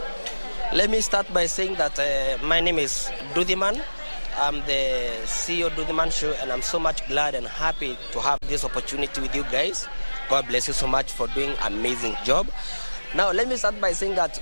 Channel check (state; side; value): inverted; both; correlation -1.00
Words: Let me start by saying that my name is Dudhiman. I'm the CEO of Dudhiman Show, and I'm so much glad and happy to have this opportunity with you guys. God bless you so much for doing an amazing job. Now, let me start by saying that